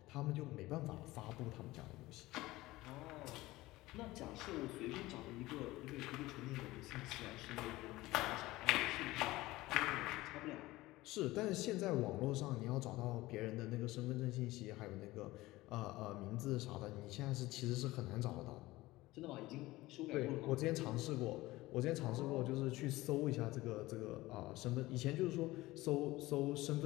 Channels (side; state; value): right; quieter; 18.7 dB